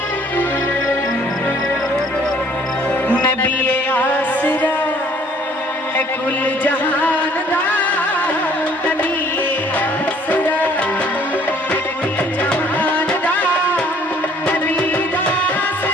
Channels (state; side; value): normal; both; correlation 0.58